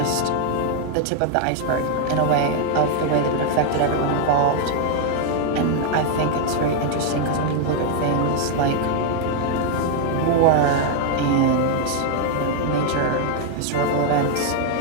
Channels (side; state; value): both; different; correlation 0.00